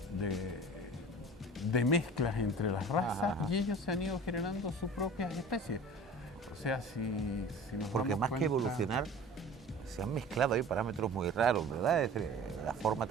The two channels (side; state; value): both; normal; correlation 0.41